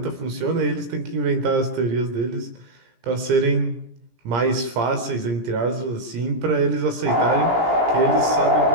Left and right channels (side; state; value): left; late; 17 ms